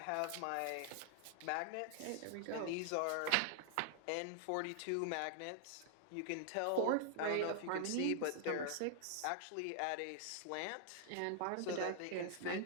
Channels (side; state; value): both; different; correlation 0.00